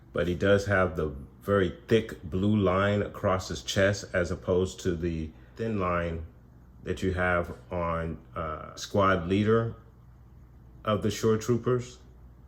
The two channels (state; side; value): identical; both; correlation 1.00